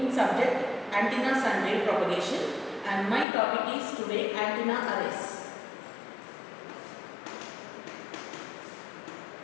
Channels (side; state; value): right; drops out; at 3.2 s